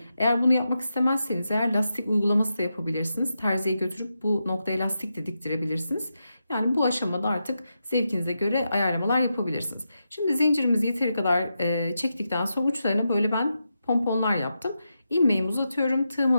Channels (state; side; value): inverted; both; correlation -0.87